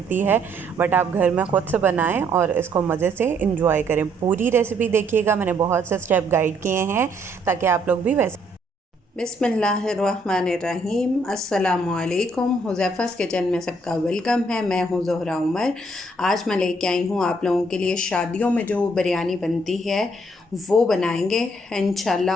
है, बट आप घर में ख़ुद से बनाएं और इसको मज़े से इंजॉय करें। पूरी रेसिपी देखिएगा, मैंने बहुत से स्टेप गाइड किए हैं ताकि आप लोग भी वैसे। बिस्मिल्लाहिर्रहमानिर्रहीम, अस्सलामुअलैकुम। हुज़ैफ़ा's किचन में सबका वेलकम है। मैं हूँ ज़ोहरा उमर। आज मैं लेके आई हूँ आप लोगों के लिए शादियों में जो बिरयानी बनती है वो बनाएंगे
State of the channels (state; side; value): normal; both; correlation 0.68